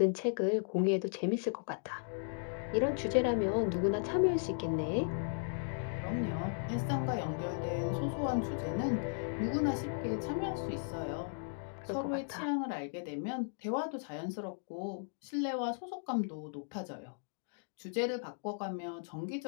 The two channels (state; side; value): silent; right; digital silence